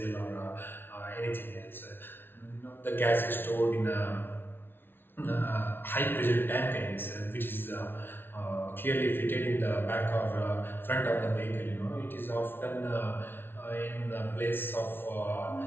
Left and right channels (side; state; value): right; late; 0.11 ms